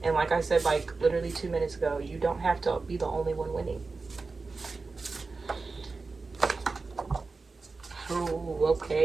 And like I said, like literally 2 minutes ago, you don't have to be the only one winning. Oh,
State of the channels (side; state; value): left; quieter; 4.0 dB